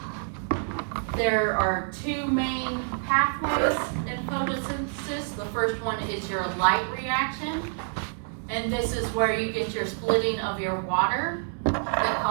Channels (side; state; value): left; silent; 60 dB below the other